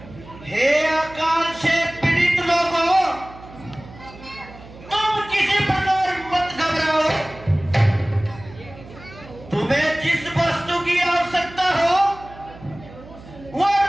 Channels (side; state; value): right; noise; hum, 19 dB below the sound